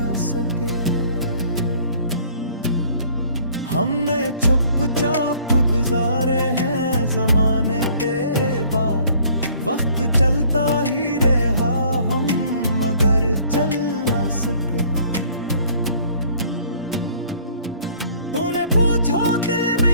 सके। हमने चुपचाप गुजारे हैं ज़माने तेरे बाद, वक्त चलता ही रहा हम मगर चल न सके। तूने पूछा दिल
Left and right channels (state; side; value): inverted; both; correlation -0.56